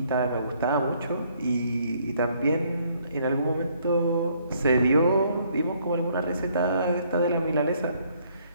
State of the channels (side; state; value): both; inverted; correlation -0.67